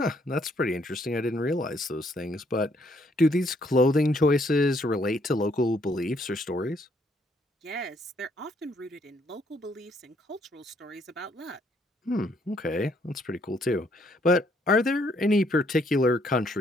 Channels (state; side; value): normal; both; correlation 0.68